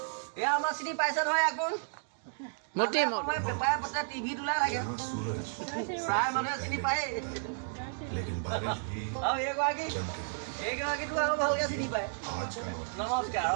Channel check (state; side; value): silent; left; digital silence